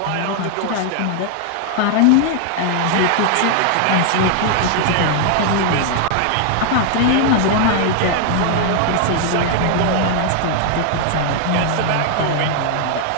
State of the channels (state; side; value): different; both; correlation 0.00